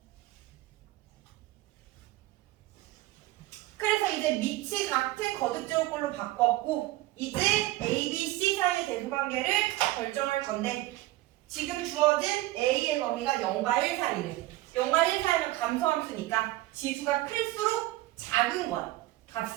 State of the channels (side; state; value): left; quieter; 17.2 dB